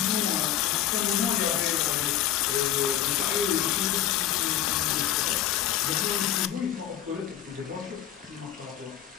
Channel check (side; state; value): right; quieter; 11.2 dB